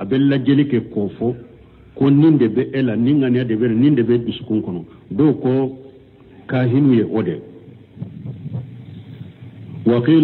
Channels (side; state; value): both; identical; correlation 1.00